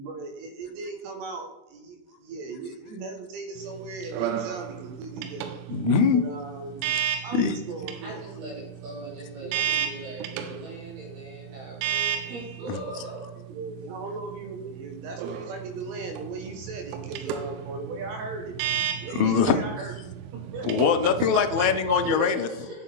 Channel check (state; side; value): late; left; 22 ms